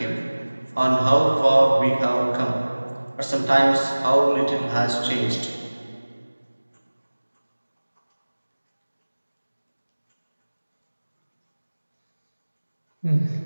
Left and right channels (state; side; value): inverted; both; correlation -1.00